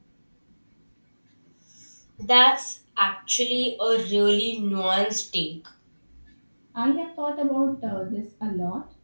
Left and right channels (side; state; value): both; inverted; correlation -1.00